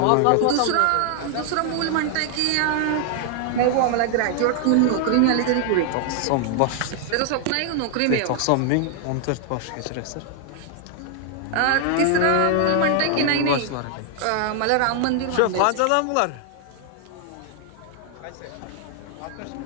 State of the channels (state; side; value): different; both; correlation 0.00